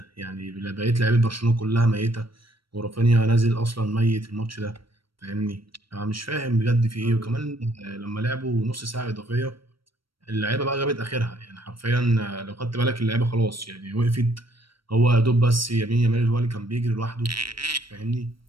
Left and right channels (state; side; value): late; left; 0.74 ms